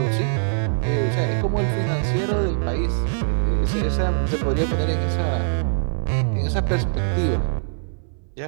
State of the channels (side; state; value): left; silent; 64 dB below the other